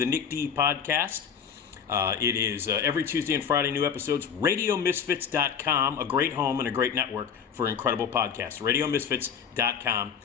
Nick D Podcast. It is every Tuesday and Friday, new episodes. RadioMisfits.com, a great home and a great network for incredible podcasts. RadioMisfits.com.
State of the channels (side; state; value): right; quieter; 7.5 dB